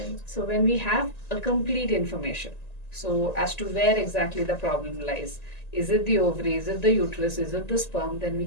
So when we have a complete information, so as to where exactly the problem lies, is it the ovary, is it the uterus, is it the sperm, then we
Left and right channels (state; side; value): late; right; 1.9 ms